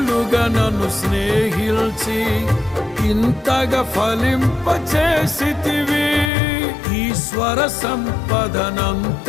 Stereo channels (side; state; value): right; drops out; at 6.3 s